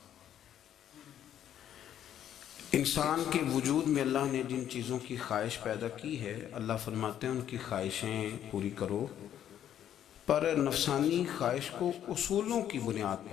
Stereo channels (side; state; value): right; quieter; 10.4 dB